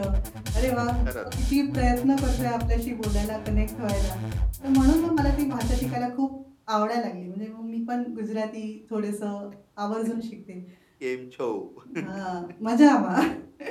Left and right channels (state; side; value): identical; both; correlation 1.00